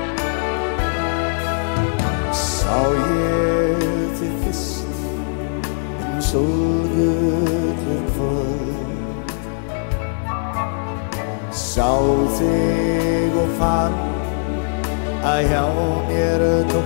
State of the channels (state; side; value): silent; right; digital silence